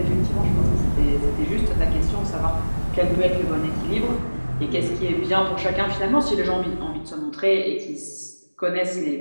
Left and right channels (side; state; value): both; inverted; correlation -1.00